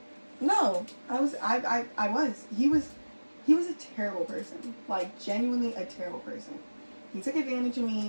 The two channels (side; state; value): both; inverted; correlation -1.00